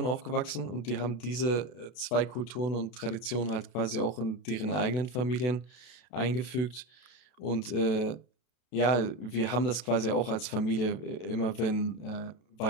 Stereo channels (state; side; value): late; right; 32 ms